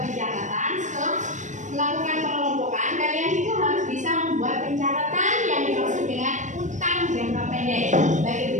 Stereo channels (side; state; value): left; late; 0.35 ms